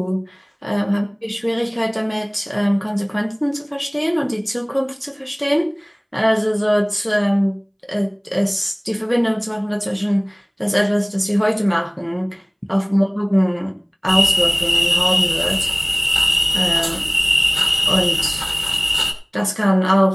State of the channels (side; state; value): both; identical; correlation 1.00